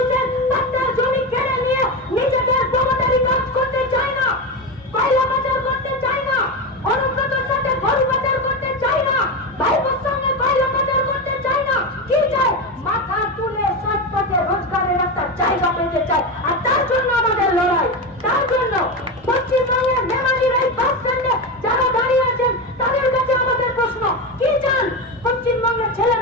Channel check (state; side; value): normal; both; correlation 0.17